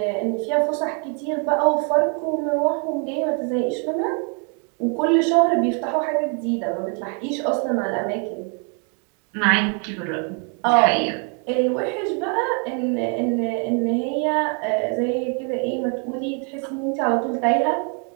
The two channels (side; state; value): left; quieter; 39.1 dB